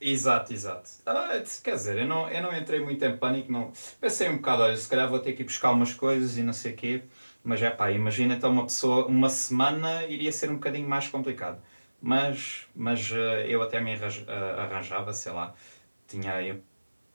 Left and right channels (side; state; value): both; inverted; correlation -1.00